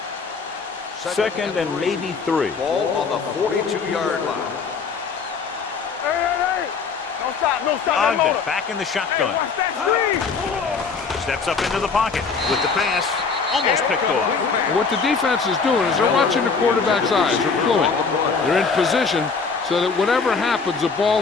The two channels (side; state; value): right; quieter; 5.1 dB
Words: Second and maybe 3. Ball on the 42-yard line. Ogden back in the shotgun. Steps up into the pocket with the pass. Almost picked off. What the defense is doing is they're watching the quarterback's eyes. They're cluing. They're in position so that whatever happens, the